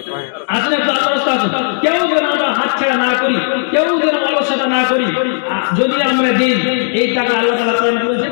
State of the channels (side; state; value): right; silent; digital silence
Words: আসলে একটু আল্লাহর রাস্তা আছে কেউ যেন আমরা হাতছাড়া না করি কেউ যেন অলসতা না করি যদি আমরা দিই এই টাকা আল্লাহ তাআলা প্রদান করেছেন